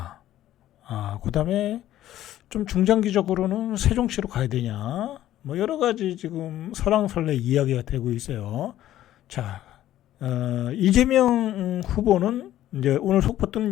그 다음에 좀 중장기적으로는 세종시로 가야 되냐, 뭐 여러 가지 지금 설왕설래 이야기가 되고 있어요. 자, 이재명 후보는 이제 오늘 속보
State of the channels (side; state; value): right; quieter; 13.1 dB